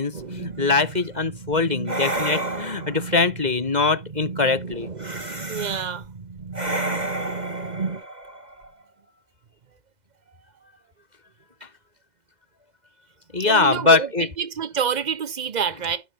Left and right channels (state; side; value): late; left; 2.0 ms